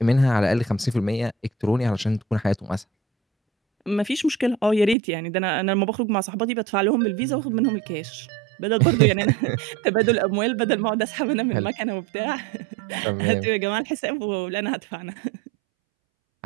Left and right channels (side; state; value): left; drops out; at 5.0 s